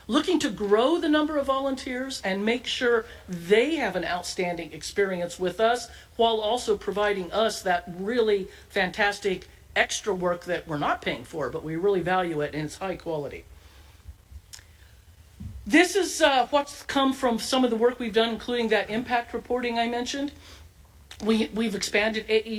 looking to grow the number of volunteers and make sure they have an outstanding experience with us while also providing us that really fantastic extra work that we're not paying for, but we really value it and it's high quality. This is what's come from some of the work we've done, including that impact reporting I mentioned. We've expanded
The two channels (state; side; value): identical; both; correlation 1.00